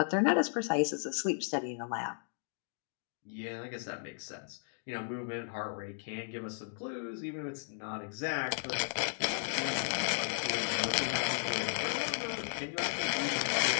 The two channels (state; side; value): silent; right; digital silence